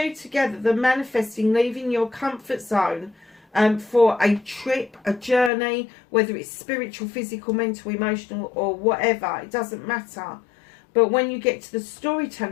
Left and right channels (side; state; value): right; drops out; at 5.5 s